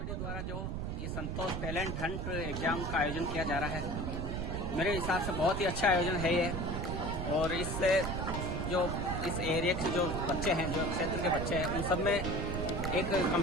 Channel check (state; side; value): noise; right; rumble, 3 dB below the sound